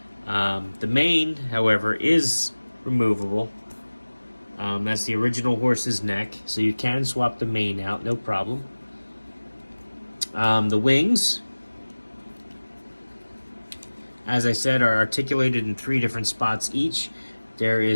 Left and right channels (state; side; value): inverted; both; correlation -1.00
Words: The mane, however, is removable. That's the original horse's neck, so you can swap the mane out, no problem. The wings, as I said, are articulated in 3 different spots each. There